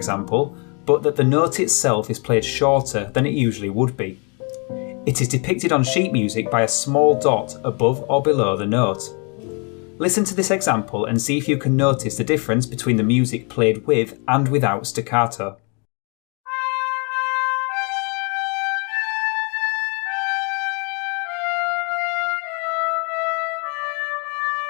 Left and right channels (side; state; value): right; quieter; 34.6 dB